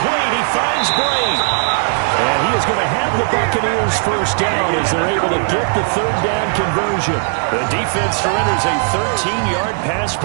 He finds Bray. And he is going to have the Buccaneers 1st down as they're able to get the 3rd down conversion. The defense surrenders a 13-yard pass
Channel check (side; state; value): left; silent; digital silence